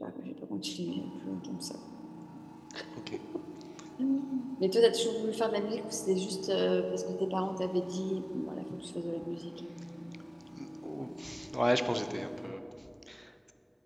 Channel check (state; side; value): identical; both; correlation 1.00